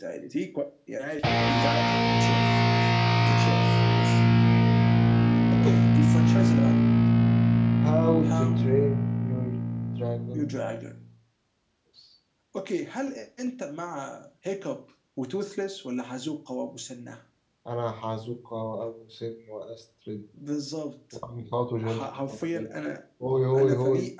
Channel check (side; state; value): both; identical; correlation 1.00